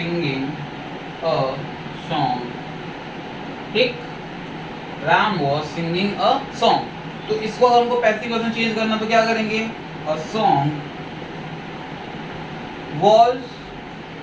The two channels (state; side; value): identical; both; correlation 1.00